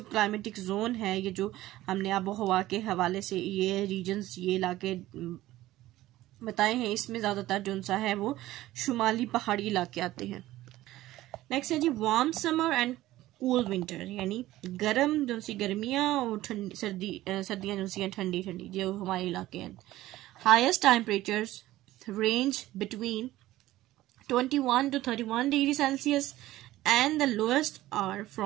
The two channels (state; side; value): quieter; left; 15.9 dB